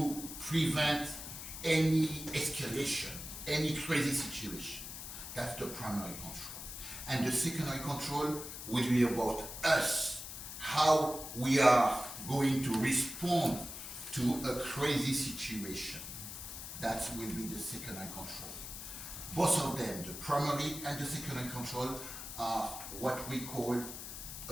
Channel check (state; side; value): noise; left; hiss, 9 dB below the sound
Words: prevent any escalation, any crazy situation. That's the primary control. And the secondary control will be about us, how we are going to respond to a crazy situation. That will be the secondary control. Both of them, the primary and the secondary control, are what we call